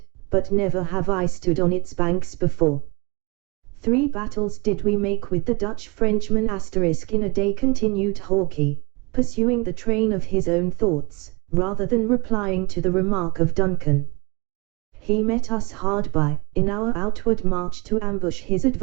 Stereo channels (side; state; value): left; quieter; 27.6 dB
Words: but never have I stood on its banks before. 3 battles did we make with the Dutch Frenchmen in a day, continued Hawkeye, pursuing the train of his own thoughts, rather than replying to the remark of Duncan. He met us hard by, in our outward march to ambush his